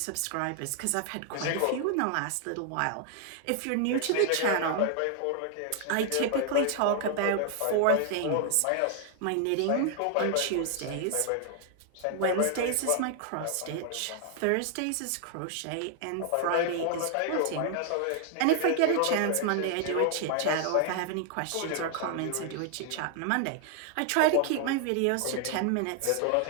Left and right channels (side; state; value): both; different; correlation 0.00